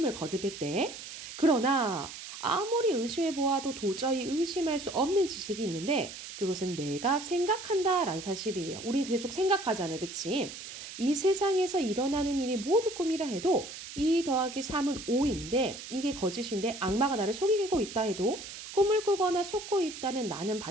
거듭했대. 그러나 아무리 의심해 보아도 도저히 의심할 수 없는 지식이 있는데 그것은 내가 생각한다라는 사실이에요. 우리 계속 생각하잖아, 그치? 이 세상에서 일어나는 일이 모두 꿈이라 해도 2 더하기 3은 5인데 이게 거짓인데 악마가 나를 속이고 있다 해도 꿈을 꾸거나 속고 있다는 나는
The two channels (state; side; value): noise; right; hiss, 11 dB below the sound